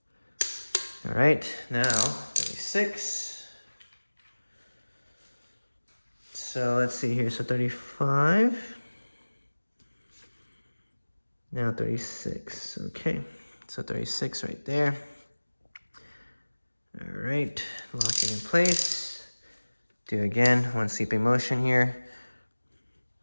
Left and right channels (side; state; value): both; inverted; correlation -1.00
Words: All right, now 36. So let's see here, so 35. Now 36, okay. So 36 right there. All right, lock it in place. Do again, one sweeping motion here.